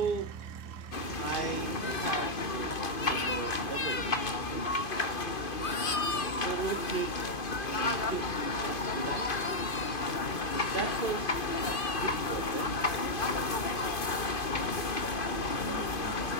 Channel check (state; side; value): late; right; 2.5 ms